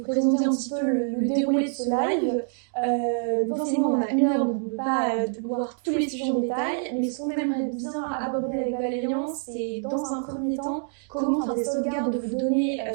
présenter un petit peu le déroulé de ce live. Forcément on a 1 heure donc on ne peut pas voir tous les sujets en détail, mais ce qu'on aimerait bien aborder avec Valérian, c'est dans un premier temps comment faire des sauvegardes de vos données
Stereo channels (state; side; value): silent; left; 61 dB below the other